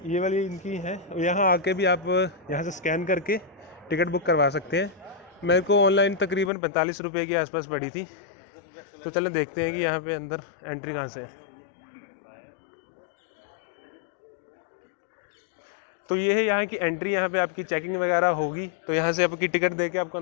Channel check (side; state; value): right; drops out; at 6.5 s